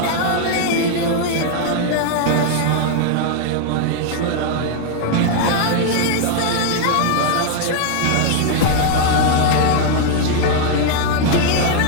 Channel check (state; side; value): different; both; correlation 0.00